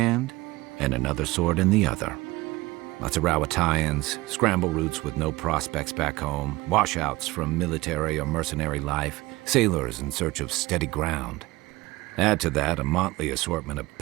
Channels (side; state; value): left; quieter; 20.4 dB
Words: and another sword in the other. Lots of Rawatayans, scramble routes with no prospects back home, washouts from military or mercenary life, sailors in search of steady ground. Add to that a motley assortment of